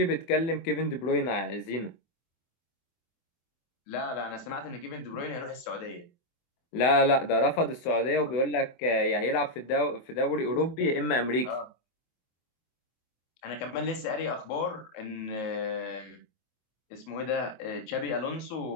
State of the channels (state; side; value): late; right; 24 ms